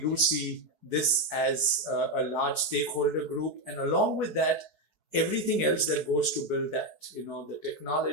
see this as a large stakeholder group, and along with that, everything else that goes to build that, the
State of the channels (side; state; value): left; late; 4.7 ms